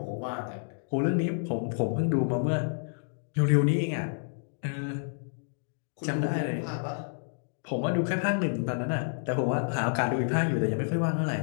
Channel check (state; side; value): silent; right; digital silence